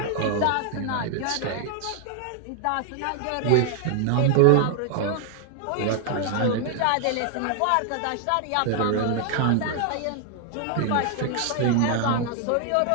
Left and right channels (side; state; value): both; different; correlation 0.00